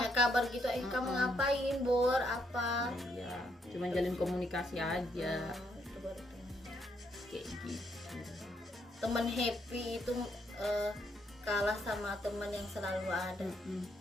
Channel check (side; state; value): both; normal; correlation 0.75